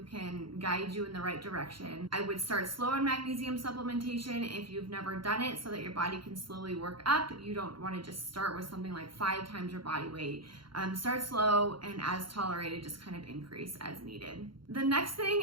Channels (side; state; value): left; late; 0.73 ms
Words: can guide you in the right direction. I would start slow on magnesium supplementation if you've never done it, so that your body can slowly work up. You don't want to just start with something like 5 times your body weight. Start slow, and as tolerated, just kind of increase as needed. The next thing